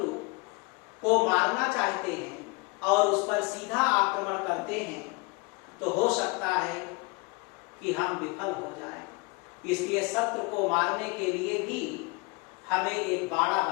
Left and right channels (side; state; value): right; quieter; 27.3 dB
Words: को मारना चाहते हैं और उस पर सीधा आक्रमण करते हैं तो हो सकता है कि हम विफल हो जाएं। इसलिए शत्रु को मारने के लिए भी हमें एक बाड़ा